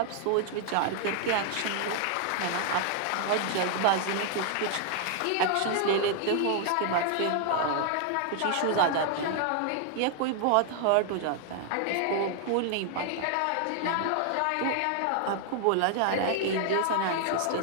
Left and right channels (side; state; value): both; different; correlation 0.00